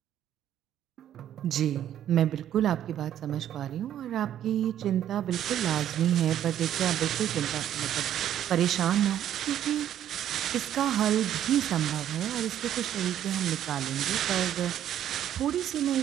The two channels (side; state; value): left; quieter; 10.9 dB